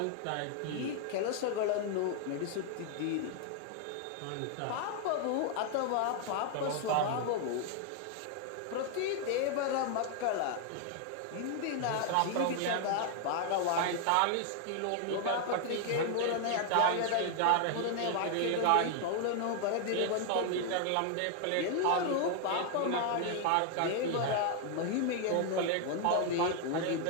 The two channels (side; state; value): both; different; correlation 0.00